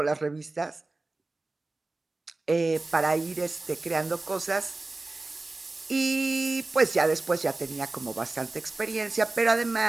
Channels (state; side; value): quieter; left; 3.2 dB